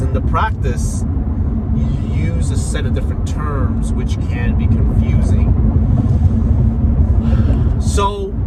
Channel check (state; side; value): identical; both; correlation 1.00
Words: in the practice, you use a set of different terms which can be confusing. So,